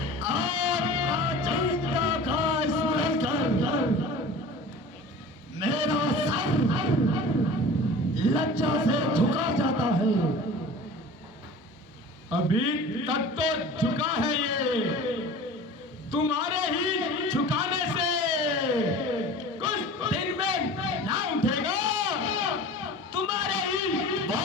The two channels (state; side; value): normal; both; correlation 0.39